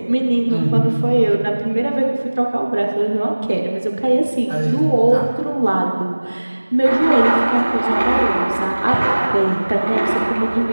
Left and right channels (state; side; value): inverted; both; correlation -1.00